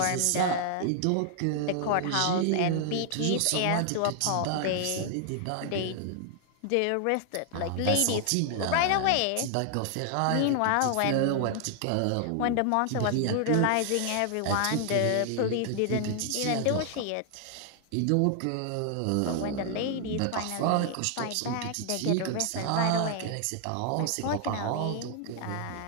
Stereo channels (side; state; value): both; different; correlation 0.00